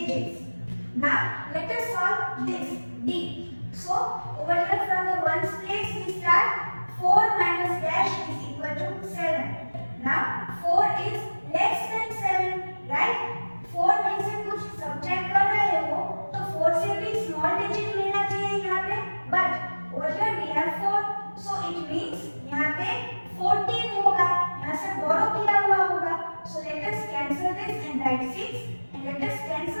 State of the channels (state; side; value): inverted; both; correlation -1.00